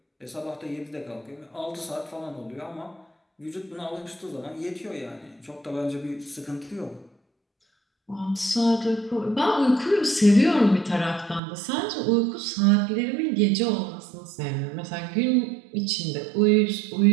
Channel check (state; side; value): drops out; left; at 11.4 s